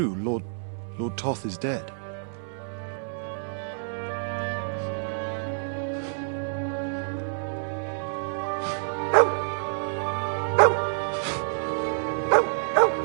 Lord Toth is dead.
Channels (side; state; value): left; silent; 60 dB below the other